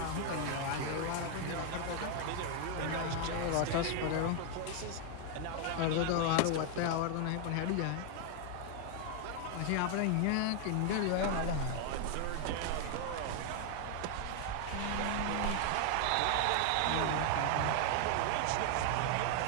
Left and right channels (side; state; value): both; different; correlation 0.00